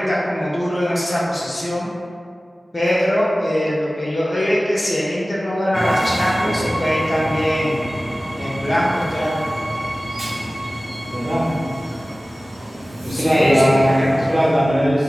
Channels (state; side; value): normal; both; correlation 0.97